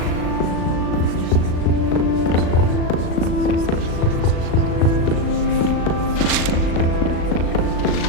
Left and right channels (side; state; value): right; late; 37 ms